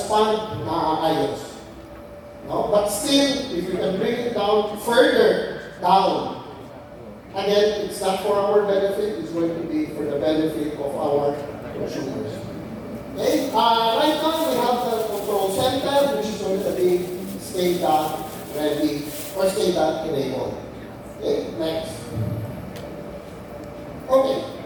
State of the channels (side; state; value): both; identical; correlation 1.00